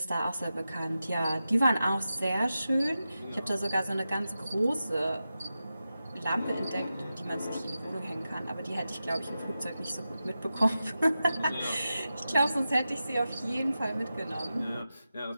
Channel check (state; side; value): inverted; both; correlation -0.92